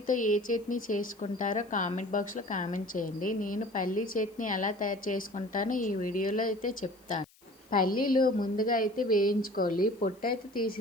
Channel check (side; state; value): left; noise; hiss, 29 dB below the sound